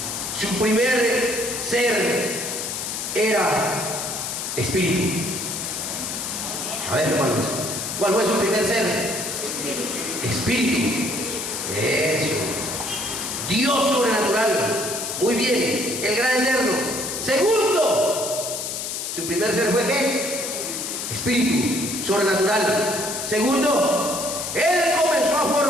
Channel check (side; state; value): left; noise; hiss, 4 dB below the sound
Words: Su primer ser era espíritu. A ver, hermanos, ¿cuál fue su primer ser? Espíritu. Eso. Dios sobrenatural. Muy bien, el gran eterno. Segundo, su primer ser fue ¿qué? Espíritu sobrenatural. Segundo, él comenzó a